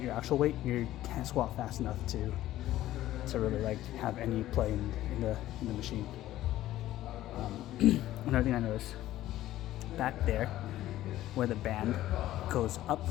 your actual weight, you can't squat fast enough to really like have any play in the machine. Another thing I noticed back there where the band goes up,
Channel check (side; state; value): right; quieter; 14.4 dB